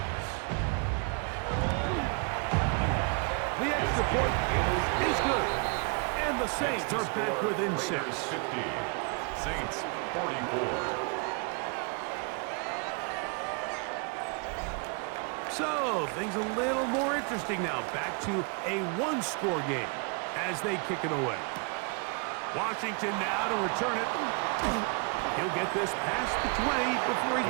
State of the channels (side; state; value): left; quieter; 35.3 dB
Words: The extra point is good. And the Saints are back within 6. 50. Saints 44. So, things a little more interesting now. Back to a 1-score game as they kick it away. Washington now to return it. He'll get this past the 20 before he's